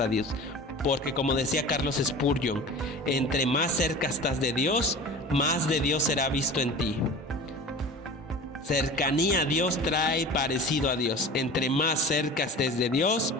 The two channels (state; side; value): normal; both; correlation 0.37